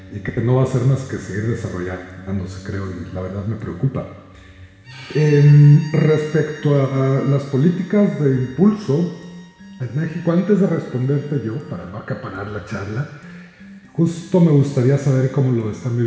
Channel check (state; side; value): identical; both; correlation 1.00